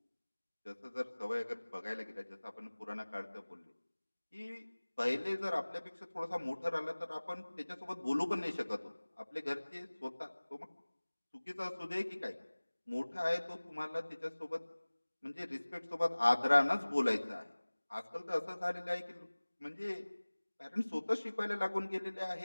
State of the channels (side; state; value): both; inverted; correlation -1.00